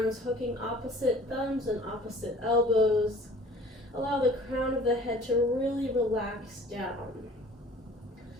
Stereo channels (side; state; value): both; normal; correlation 0.49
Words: hooking opposite thumbs and opposite elbows. Allow the crown of the head to really relax down.